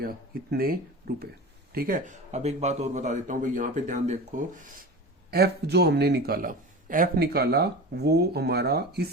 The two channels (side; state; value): both; normal; correlation 0.31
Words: इतने रुपए, ठीक है। अब एक बात और बता देता हूं भाई, यहाँ पे ध्यान देखो, एफ जो हमने निकाला, एफ निकाला वो हमारा